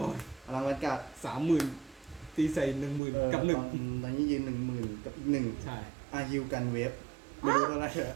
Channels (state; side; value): drops out; left; at 3.0 s